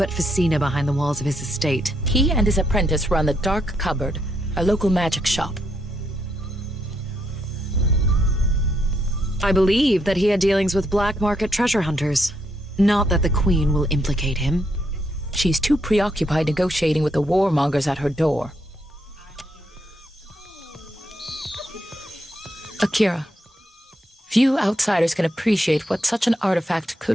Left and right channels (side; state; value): both; normal; correlation 0.77